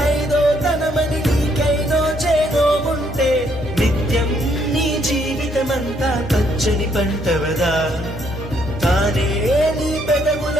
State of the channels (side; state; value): both; normal; correlation 0.70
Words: ఐదో తనమని నీకైనో చేదో ఉంటే నిత్యం నీ జీవితమంతా పచ్చని పంటవదా తానే నీ